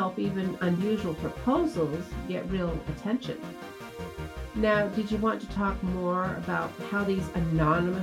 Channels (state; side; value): identical; both; correlation 1.00